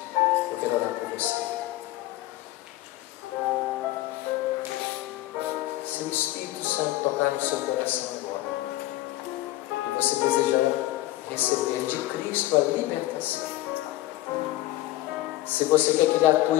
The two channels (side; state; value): right; quieter; 16.5 dB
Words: Eu quero orar por você. Se o Espírito Santo tocar no seu coração agora, e você desejar receber de Cristo a libertação, se você quer que Ele